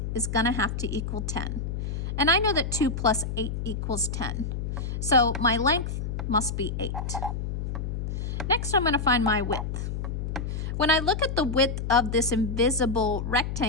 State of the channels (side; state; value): left; noise; hum, 3 dB below the sound